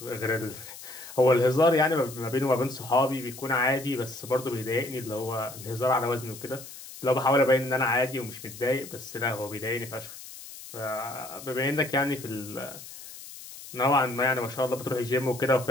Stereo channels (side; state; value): left; noise; hiss, 14 dB below the sound